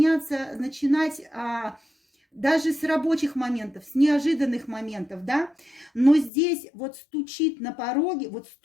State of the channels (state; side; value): drops out; right; at 6.3 s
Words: даже с рабочих моментов, с неожиданных моментов, да, но здесь вот стучит на пороге, вот